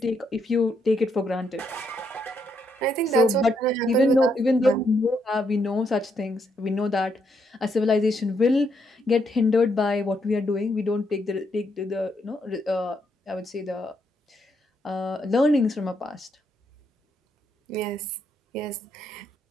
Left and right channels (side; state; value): both; normal; correlation 0.76